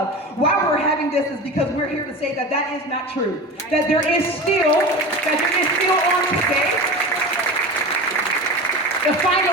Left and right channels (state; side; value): normal; both; correlation 0.30